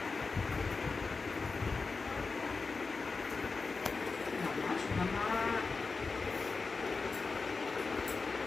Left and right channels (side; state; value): right; quieter; 4.3 dB